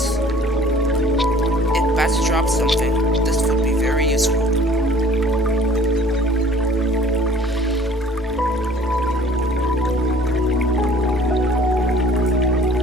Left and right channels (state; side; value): normal; both; correlation 0.52